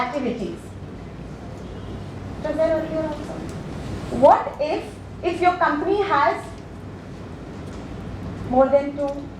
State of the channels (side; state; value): both; identical; correlation 1.00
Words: It was there earlier also. What if your company has more than 2